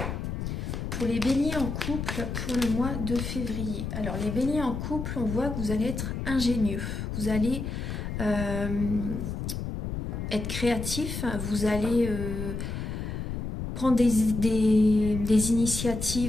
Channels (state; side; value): noise; left; rumble, 4 dB below the sound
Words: Pour les béliers en couple pour le mois de février. Alors les béliers en couple, on voit que vous allez être ingénieux. Vous allez être créatif, vous allez... prendre des